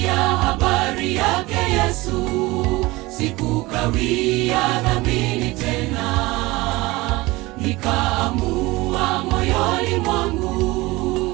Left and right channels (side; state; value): left; quieter; 21.2 dB